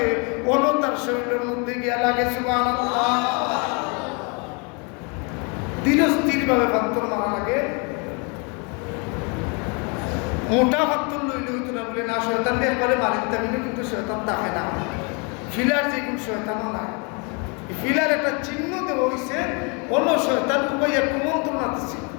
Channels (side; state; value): right; quieter; 33.5 dB